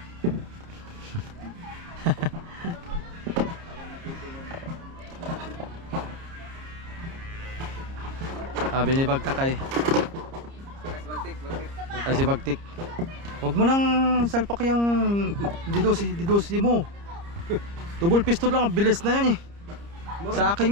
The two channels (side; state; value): left; late; 30 ms